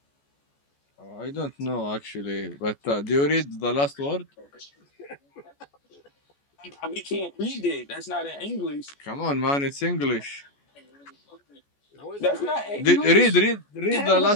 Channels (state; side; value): late; right; 14 ms